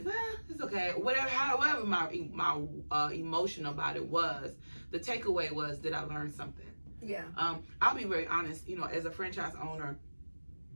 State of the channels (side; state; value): both; inverted; correlation -1.00